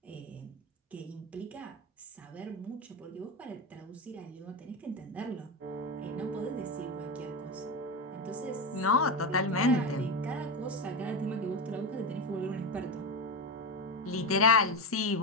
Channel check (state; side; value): normal; both; correlation 0.16